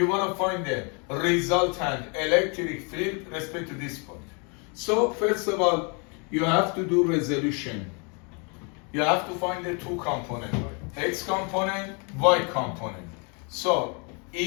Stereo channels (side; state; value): right; quieter; 35.0 dB